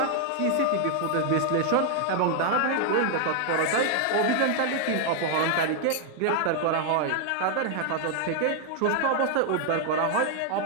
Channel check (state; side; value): different; both; correlation 0.00